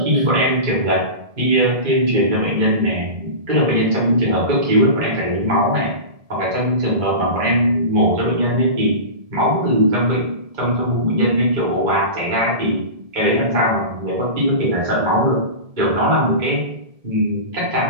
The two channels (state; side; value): late; left; 1.7 ms